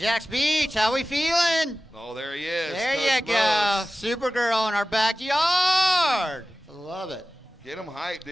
Beach, how we feeling? Oh, there he is. There Coach you go. Supergirl in our backyard. Love it. Get him hyped,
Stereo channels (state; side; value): normal; both; correlation 0.95